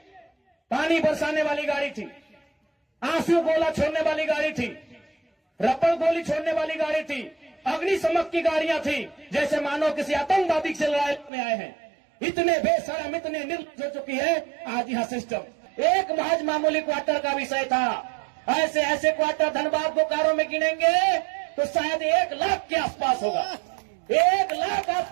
पानी बरसाने वाली गाड़ी थी, आंसू गोला छोड़ने वाली गाड़ी थी, रबर गोली छोड़ने वाली गाड़ी थी, अग्निशमक की गाड़ियां थी, जैसे मानो किसी आतंकवादी से लड़ाई में आए हैं। इतने बेशरम, इतने निर्लज्ज हो चुकी है आज यहाँ सिस्टम। एक महज मामूली क्वार्टर का विषय था, ऐसे ऐसे क्वार्टर धनबाद बोकारो में गिनेंगे तो शायद 1 लाख के आसपास होगा, 1 लाख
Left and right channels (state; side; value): drops out; left; at 11.3 s